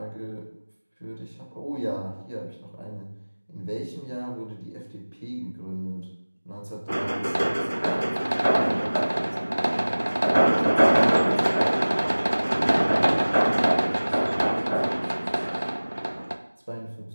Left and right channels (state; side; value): inverted; both; correlation -1.00